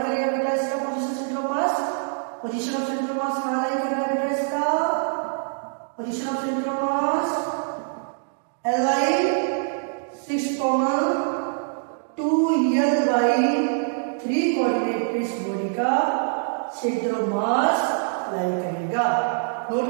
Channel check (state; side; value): silent; left; digital silence